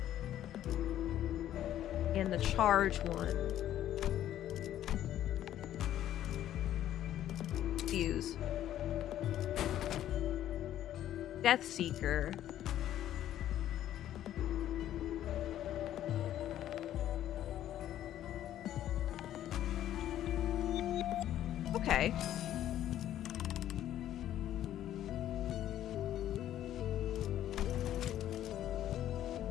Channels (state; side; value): quieter; right; 12.0 dB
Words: And the charge one. Fuse. Death Seeker. Okay.